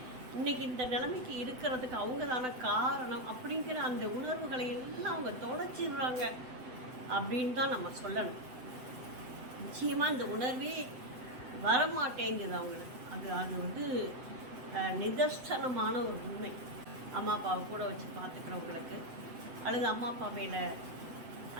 இன்றைக்கி இந்த நிலைமைக்கு இருக்கிறதுக்கு அவங்க தானே காரணம் அப்படிங்கிற அந்த உணர்வுகளை எல்லாம் அவங்க தொலைச்சிடுறாங்க அப்படின்னு தான் நம்ம சொல்லணும். நிச்சயமாக இந்த உணர்வே வரமாட்டேங்குது அவங்களுக்கு. அது வந்து நிதர்சனமான ஒரு உண்மை. அம்மா அப்பாவை கூட வச்சு பார்த்துக்கிறவங்களுக்கு அல்லது அம்மா அப்பா மேலே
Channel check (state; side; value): late; left; 7.9 ms